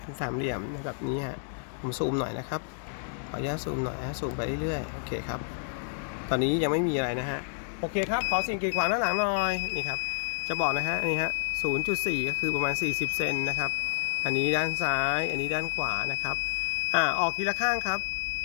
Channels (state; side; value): silent; right; digital silence